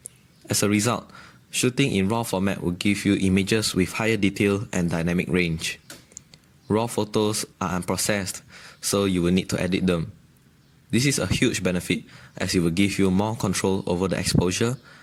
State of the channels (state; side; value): identical; both; correlation 1.00